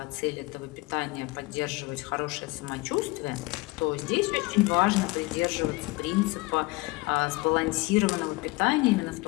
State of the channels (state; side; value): quieter; right; 22.5 dB